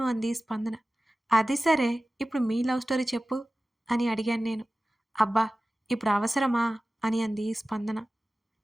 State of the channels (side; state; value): both; normal; correlation 0.96